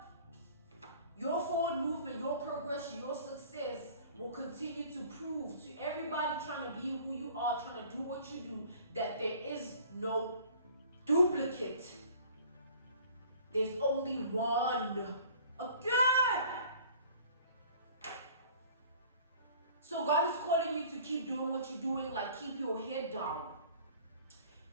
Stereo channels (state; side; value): inverted; both; correlation -0.49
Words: your forward movement, your progression, your success will continue to prove to everybody trying to be who you are, trying to do what you do, that there is no duplicate. There's only one. Again! So God is calling you to keep doing what you're doing, like keep your head down.